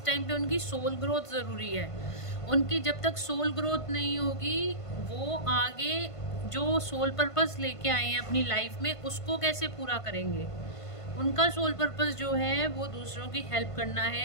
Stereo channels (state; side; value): late; right; 1.5 ms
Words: टाइम पे उनकी सोल ग्रोथ ज़रूरी है। उनकी जब तक सोल ग्रोथ नहीं होगी, वो आगे जो सोल पर्पस लेके आए हैं अपनी लाइफ में, उसको कैसे पूरा करेंगे। उनका सोल पर्पस जो है वो दूसरों की हेल्प करना